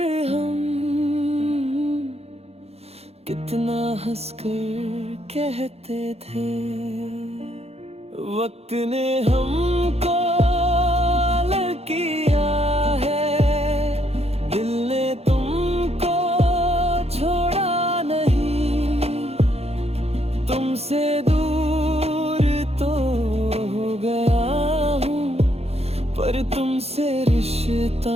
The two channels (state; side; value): late; left; 0.30 ms